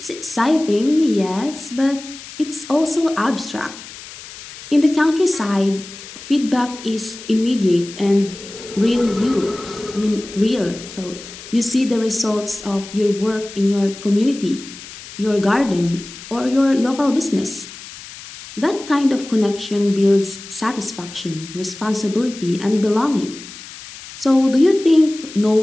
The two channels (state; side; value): noise; left; hiss, 15 dB below the sound